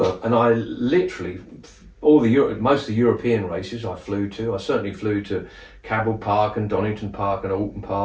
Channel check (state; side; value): identical; both; correlation 1.00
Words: and I literally most of the European races I flew to. I certainly flew to Cabell Park and Donington Park and Alton